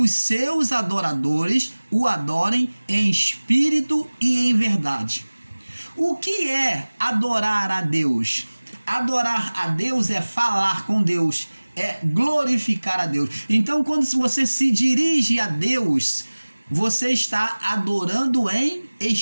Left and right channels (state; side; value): inverted; both; correlation -1.00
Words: seus adoradores o adorem em espírito e em verdade. O que é adorar a Deus? Adorar a Deus é falar com Deus, é glorificar a Deus. Então, quando você se dirige a Deus, você está adorando em